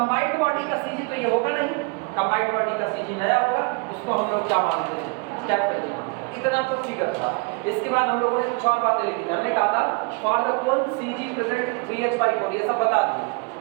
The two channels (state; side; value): quieter; left; 31.7 dB